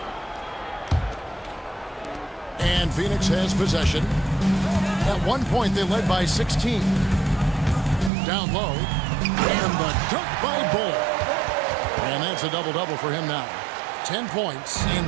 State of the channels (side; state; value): left; drops out; at 8.1 s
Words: And Phoenix has possession. At one point, they led by 16. Down low. And the dunk by Bull. And that's a double-double for him now. 10 points and